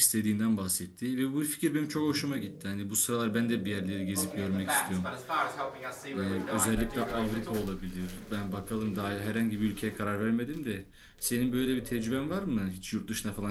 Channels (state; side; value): identical; both; correlation 1.00